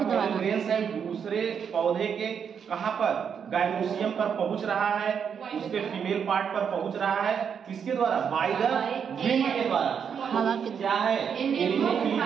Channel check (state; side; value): quieter; left; 7.3 dB